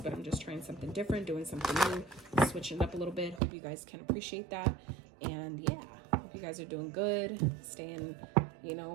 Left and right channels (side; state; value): left; drops out; at 3.4 s